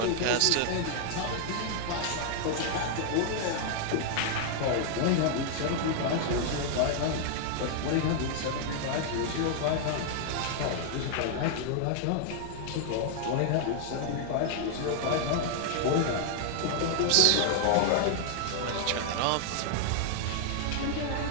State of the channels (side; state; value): both; different; correlation 0.00